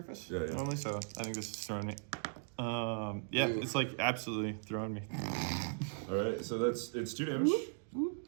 Yeah, yeah. normally, so I think this is throwing me. Yeah, Ooh. it's like absolutely throwing me. All right. So it's 2 damage,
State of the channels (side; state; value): left; silent; digital silence